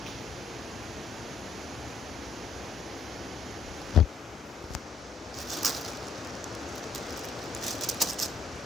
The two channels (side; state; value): right; quieter; 4.1 dB